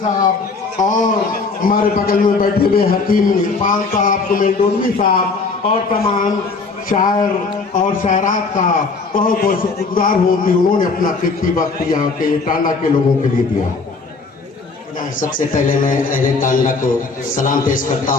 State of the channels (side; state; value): right; quieter; 4.2 dB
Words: और हमारे बगल में बैठे हुए हकीम इरफान साहब, कुमेल डोलवी साहब और तमाम शायर और शायरात का बहुत बहुत शुक्रगुजार हूँ कि उन्होंने अपना कीमती वक्त यहाँ के टांडा के लोगों के लिए दिया। सबसे पहले मैं अहले टांडा को सलाम पेश करता